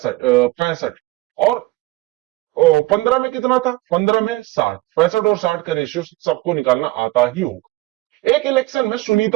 और 15 में कितना था? 15 में 60, 65 और 60 का रेशियो सबको निकालना आता ही होगा। एक इलेक्शन में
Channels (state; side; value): quieter; left; 19.4 dB